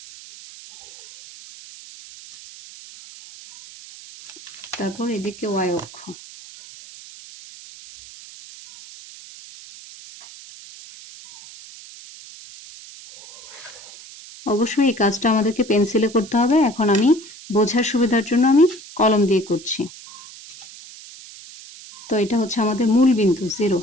তারপর এদিকে y অক্ষ। অবশ্যই এই কাজটা আমাদেরকে পেন্সিলে করতে হবে। এখন আমি বোঝার সুবিধার জন্য আমি কলম দিয়ে করছি। তো এটা হচ্ছে আমাদের মূল বিন্দু 0।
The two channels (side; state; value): right; noise; hiss, 18 dB below the sound